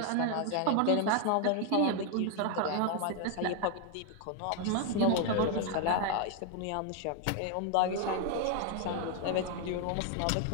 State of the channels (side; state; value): both; different; correlation 0.00